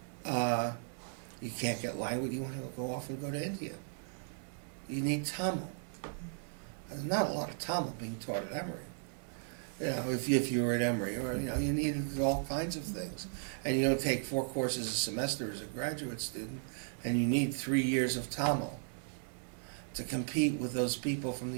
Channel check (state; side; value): silent; left; 54 dB below the other